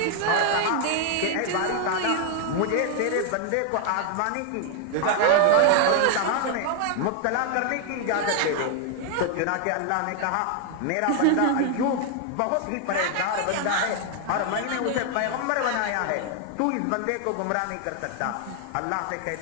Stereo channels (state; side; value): different; both; correlation 0.00